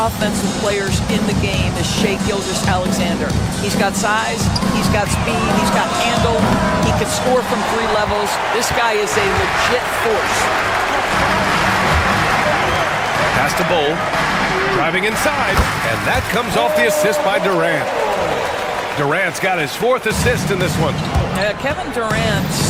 players in the game is Shai Gilgeous-Alexander. He's got size, he's got speed, he's got handle, he can score from 3 levels. This guy is a legit force. Pass to Bol, driving inside, and that comes off the assist by Durant. Durant's got his 4th assist in this one. Kevin Durant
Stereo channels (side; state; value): both; identical; correlation 1.00